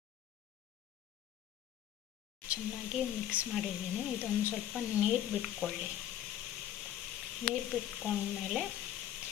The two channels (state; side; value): quieter; right; 11.5 dB